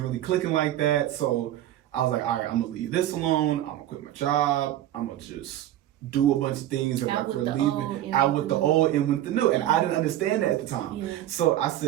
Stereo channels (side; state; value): left; quieter; 13.0 dB